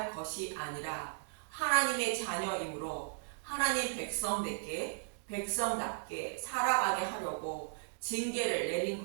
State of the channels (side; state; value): left; silent; digital silence